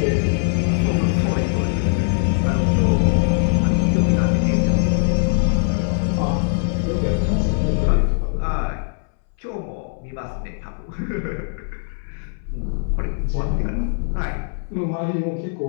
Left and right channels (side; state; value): right; silent; 64 dB below the other